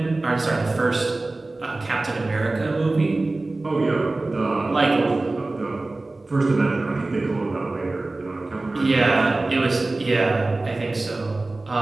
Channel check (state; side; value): quieter; left; 3.1 dB